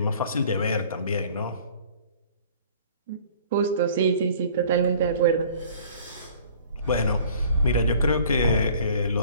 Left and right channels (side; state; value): both; inverted; correlation -0.51